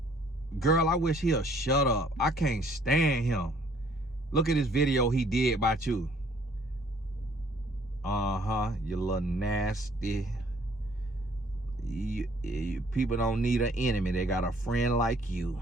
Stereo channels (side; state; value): both; normal; correlation 0.60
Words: girl, I wish he'll shut up. I can't stand him. Look at this video he did about you. You little nasty. People don't need an enemy. They got a friend like you.